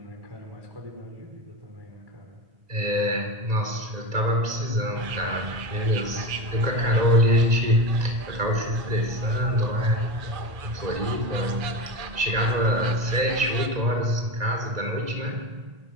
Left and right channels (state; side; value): late; left; 1.9 ms